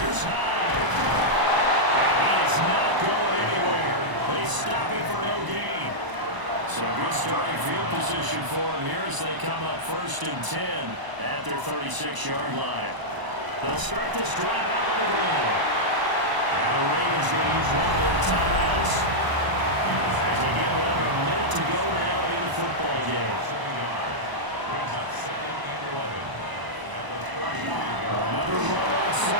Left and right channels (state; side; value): late; left; 1.0 ms